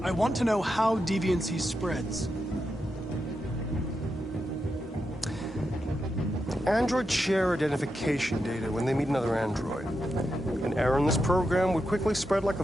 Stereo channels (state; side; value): normal; both; correlation 0.86